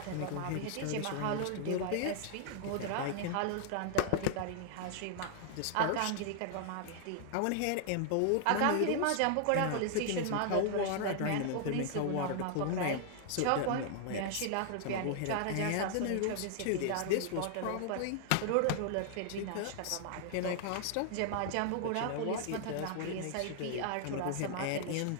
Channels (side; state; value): both; different; correlation 0.00